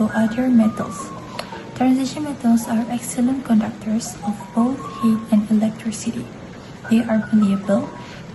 other metals. Transition metals are excellent conductors of both heat and electricity. They are malleable,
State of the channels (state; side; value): identical; both; correlation 1.00